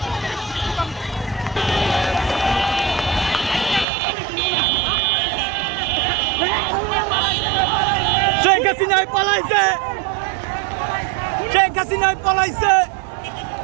শেখ হাসিনাই পলাইছে শেখ হাসিনাই পলাইছে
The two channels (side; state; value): left; drops out; at 3.9 s